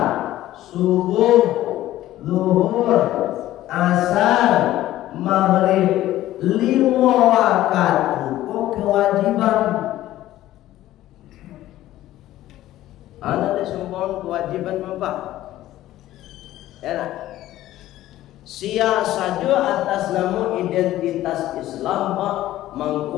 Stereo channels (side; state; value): right; quieter; 14.5 dB